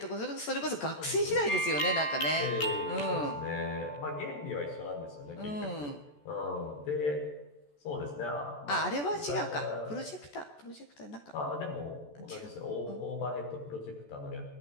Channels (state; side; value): late; right; 14 ms